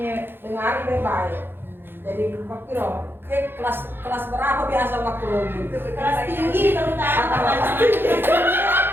dengar baik-baik. Jadi kira kelas berapa biasa waktu lagi? kelas tinggi terutama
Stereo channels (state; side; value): late; left; 0.10 ms